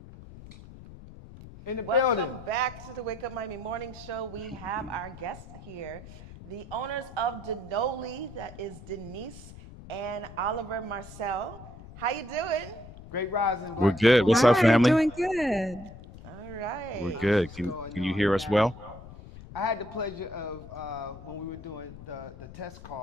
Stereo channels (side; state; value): left; noise; rumble, 16 dB below the sound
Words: In the Welcome building. back to the Wake Up Miami Morning Show. We have our guest here, the owners of Denoli, that is Denise and Oliver Marcel. How you doing? Great rising. We're good. What's up, family? Doing good. All right. We're good. Can you hear us well? I had the pleasure of, when we were doing the test